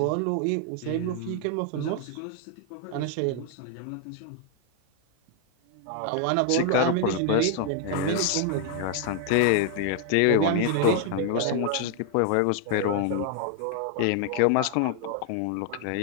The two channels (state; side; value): different; both; correlation 0.00